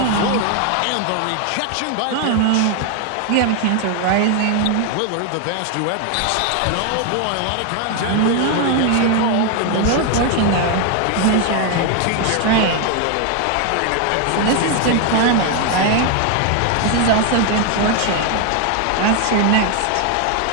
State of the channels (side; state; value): both; different; correlation 0.01